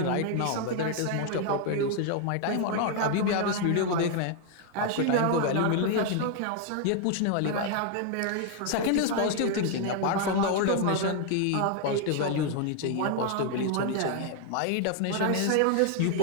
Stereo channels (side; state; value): both; different; correlation 0.00